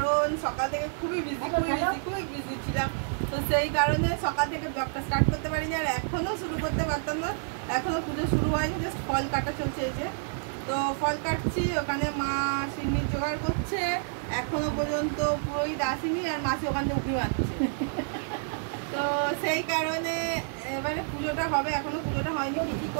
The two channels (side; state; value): left; silent; digital silence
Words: সকাল থেকে খুবই বিজি ছিলাম। তো সেই কারণে সকাল থেকে ব্লগটা স্টার্ট করতে পারিনি আর এখনও শুরু করতে পারতাম না। এখনও পুজো শুরু হয়নি, জাস্ট ফল কাটা চলছে। এই যে তো ফল কাটছি, ওখানে মা সিমির জোগাড় করছে, এখনো পর্যন্ত পুরোহিত আসেনি আর মাসি ওখান থেকে উঠে মারছে। তো সেই কারণে এবারে পুজোটা হবে, এখনো পুজোটা হয়নি। কী